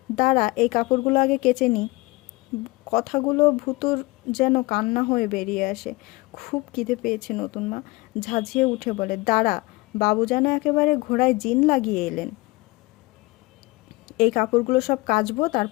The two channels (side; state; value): right; quieter; 22.7 dB